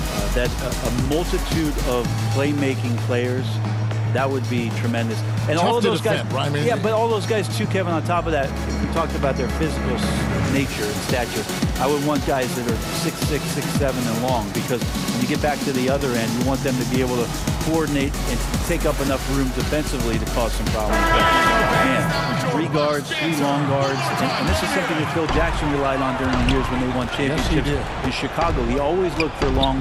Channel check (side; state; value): both; identical; correlation 1.00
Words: that a multitude of playmaking players, that would be tremendous. And tough all of those guys, defend, right? yeah, but all those guys too, Kevin, on top of that, if we talked about their physical nature and stature, I would want guys that are 6'6", 6'7", and long, because when you get back to the other end, you want them to be able to coordinate and take up enough room defensively to cause some problems. But man, 3 guards, 3 long guards, and this is something that Phil Jackson relied on during the years when they won championships in Chicago. He always looked for